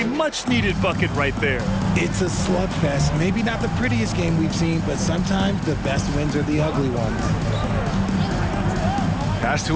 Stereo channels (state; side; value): identical; both; correlation 1.00